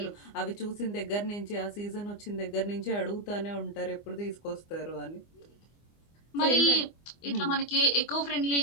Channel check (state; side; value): late; right; 24 ms